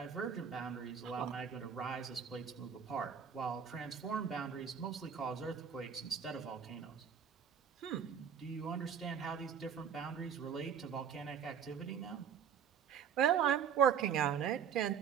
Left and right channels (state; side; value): quieter; left; 7.7 dB